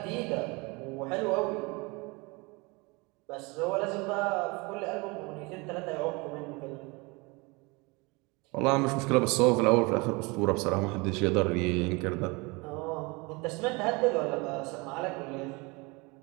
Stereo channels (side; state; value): left; quieter; 26.7 dB